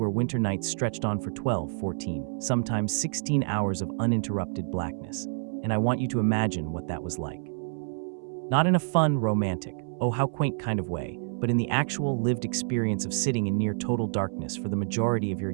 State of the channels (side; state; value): left; silent; 59 dB below the other